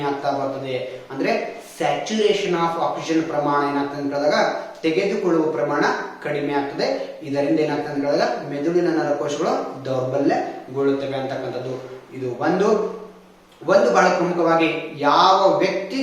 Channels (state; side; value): identical; both; correlation 1.00